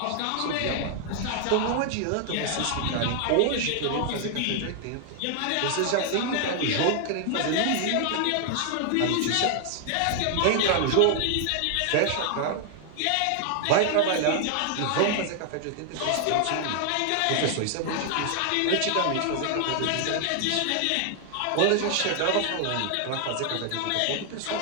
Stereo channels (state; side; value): different; both; correlation 0.00